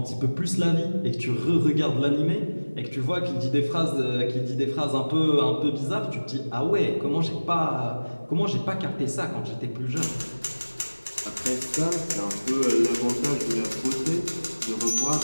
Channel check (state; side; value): inverted; both; correlation -1.00